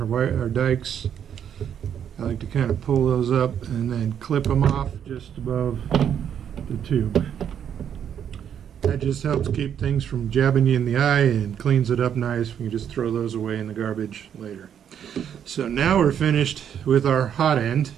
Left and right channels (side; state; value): left; quieter; 8.9 dB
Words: dikes. I like to kind of pull those up and then clip them off just above the tube. That just helps keep things from jabbing you in the eye and cleans it up nice. We can just throw those away in the garbage later. So now we're finished with our hot end.